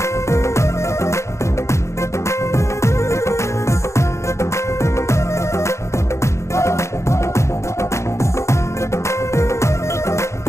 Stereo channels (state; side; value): late; right; 0.14 ms